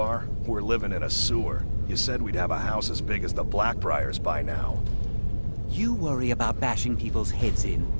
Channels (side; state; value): both; inverted; correlation -1.00